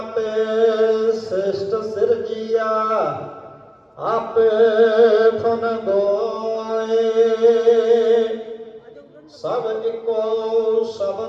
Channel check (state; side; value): identical; both; correlation 1.00